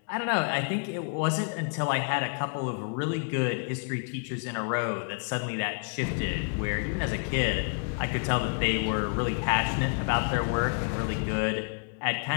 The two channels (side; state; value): right; quieter; 39.5 dB